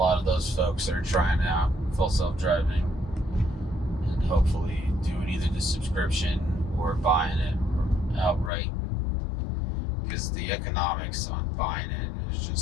of those folks that are trying out full self-driving and hopefully doing either the subscription or buying it outright, because the economics on buying it is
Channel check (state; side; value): drops out; right; at 8.5 s